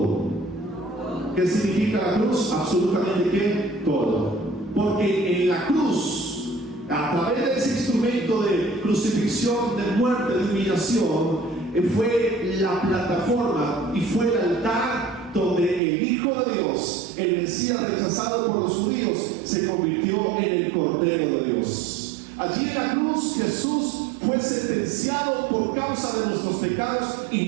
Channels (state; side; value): drops out; left; at 15.8 s